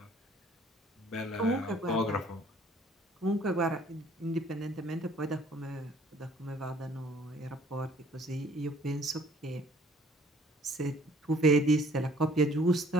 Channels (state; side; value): normal; both; correlation 0.57